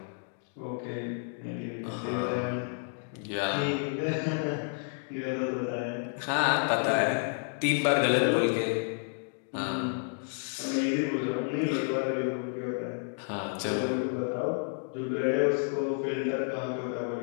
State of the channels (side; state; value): right; silent; 57 dB below the other